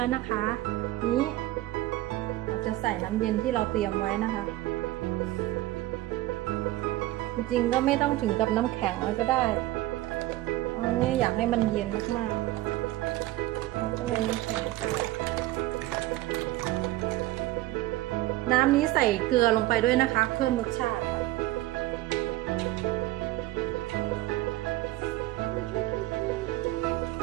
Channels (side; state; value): left; quieter; 16.9 dB